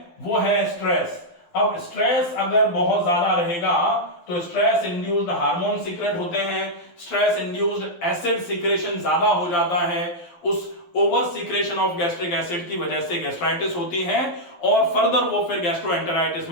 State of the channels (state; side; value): late; right; 12 ms